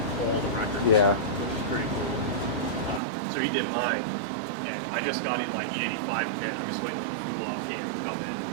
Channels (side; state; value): left; drops out; at 3.0 s